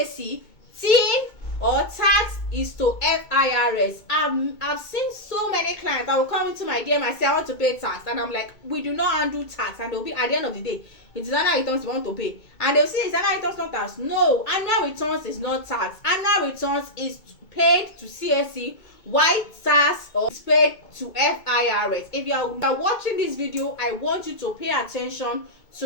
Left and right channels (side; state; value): right; late; 2.2 ms